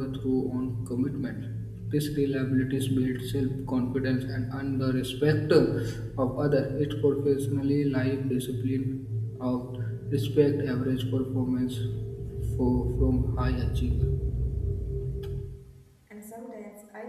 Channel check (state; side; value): identical; both; correlation 1.00